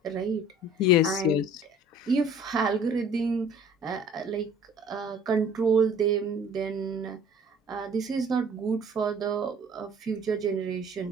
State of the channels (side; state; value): both; normal; correlation 0.51